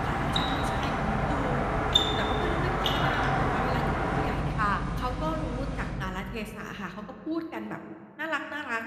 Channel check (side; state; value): both; identical; correlation 1.00